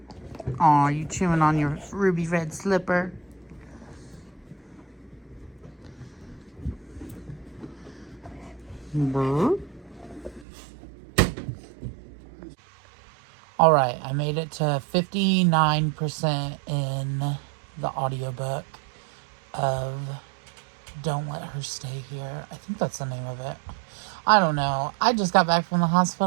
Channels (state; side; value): drops out; left; at 10.5 s